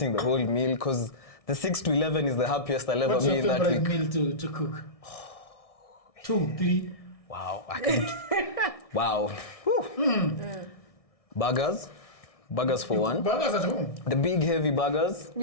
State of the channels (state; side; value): late; right; 1.6 ms